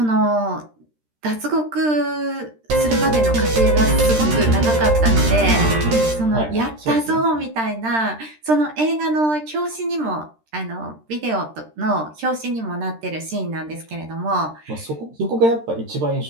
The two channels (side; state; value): left; late; 13 ms